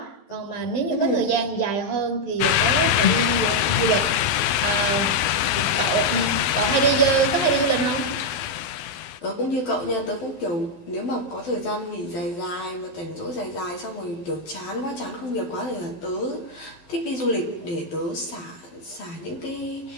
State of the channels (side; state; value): right; late; 12 ms